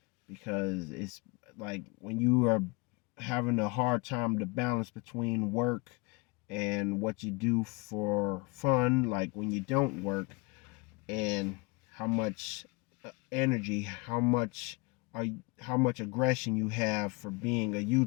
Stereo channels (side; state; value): right; quieter; 27.5 dB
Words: because it's like when you are having a hard time to balance between work and what you do for fun, like when you don't work, and how much energy, how much aggression you have for being a